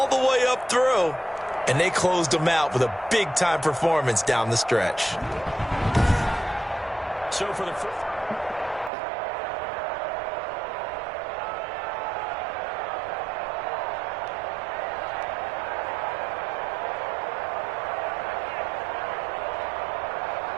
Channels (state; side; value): drops out; left; at 8.9 s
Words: the way up through. And they closed them out with a big-time performance down the stretch. So for the